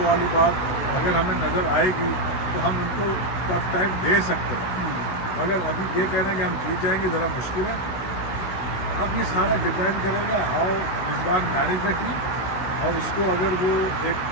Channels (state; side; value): late; right; 17 ms